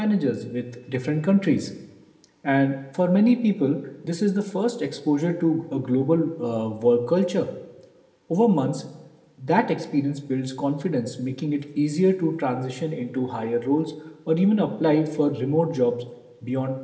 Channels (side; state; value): both; identical; correlation 1.00